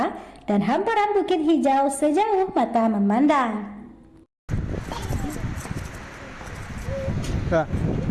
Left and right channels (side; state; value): both; identical; correlation 1.00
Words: dan hamparan bukit hijau sejauh mata memandang. Nah.